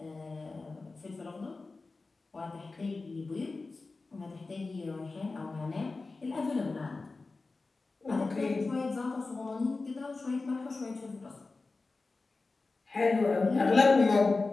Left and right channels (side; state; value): right; quieter; 3.7 dB